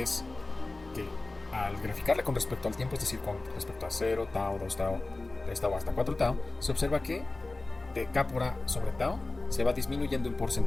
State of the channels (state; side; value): quieter; right; 3.1 dB